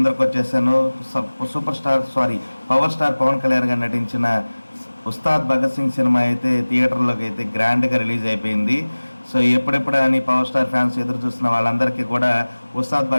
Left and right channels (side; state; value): both; inverted; correlation -1.00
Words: వచ్చేసాను. పవర్ స్టార్ పవన్ కళ్యాణ్ గారు నటించిన ఉస్తాద్ భగత్ సింగ్ సినిమా అయితే థియేటర్లోకి అయితే గ్రాండ్గా రిలీజ్ అయిపోయింది. సో ఎప్పుడెప్పుడు అని పవర్ స్టార్ ఫ్యాన్స్ ఎదురు చూస్తున్న వాళ్ళందరికీ కూడా ఉస్తాద్